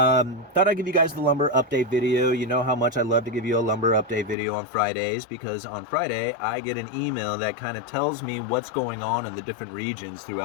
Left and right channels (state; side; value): drops out; right; at 4.4 s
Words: I'd give you guys the lumber update video. You know how much I love to give you a lumber update video on Fridays, because on Friday I get an email that kind of tells me what's going on in the different regions